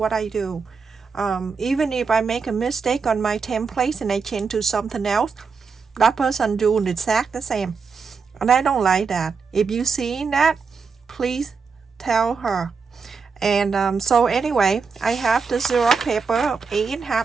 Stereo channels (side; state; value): left; quieter; 5.3 dB